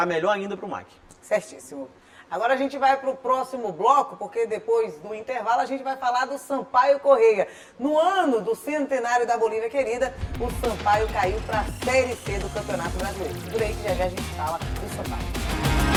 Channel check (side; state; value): both; identical; correlation 1.00